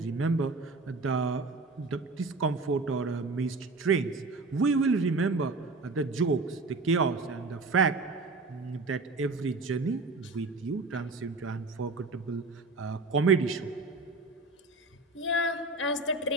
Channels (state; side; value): quieter; left; 3.5 dB